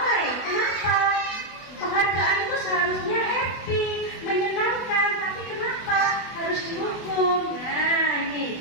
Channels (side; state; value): right; late; 24 ms